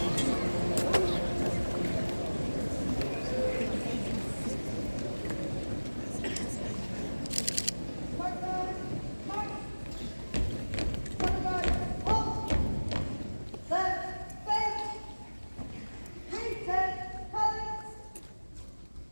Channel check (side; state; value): both; inverted; correlation -1.00